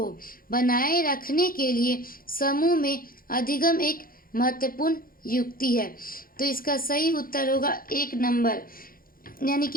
बनाए रखने के लिए समूह में अधिगम एक महत्वपूर्ण युक्ति है। तो इसका सही उत्तर होगा 1 नंबर, यानी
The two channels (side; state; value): right; late; 0.42 ms